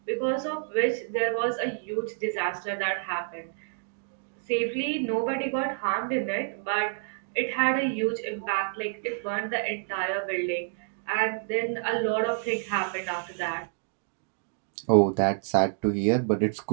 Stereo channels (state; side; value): silent; left; digital silence